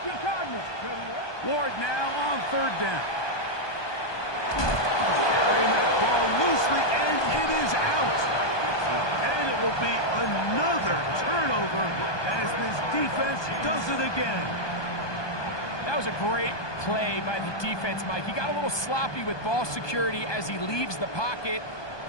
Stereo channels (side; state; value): right; late; 1.2 ms